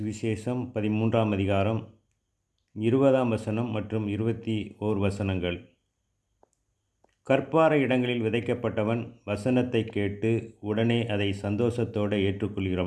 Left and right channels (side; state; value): both; identical; correlation 1.00